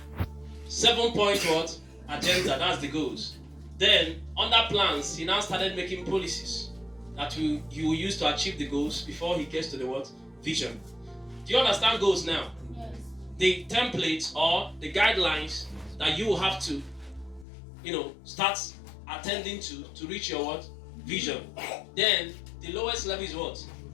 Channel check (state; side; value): drops out; right; at 17.4 s